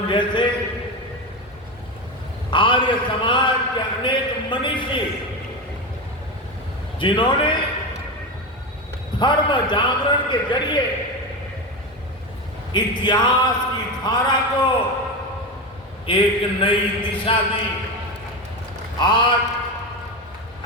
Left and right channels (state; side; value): normal; both; correlation 0.18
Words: जैसे आर्य समाज के अनेक मनीषी जिन्होंने धर्म जागरण के जरिए इतिहास की धारा को एक नई दिशा दी, आज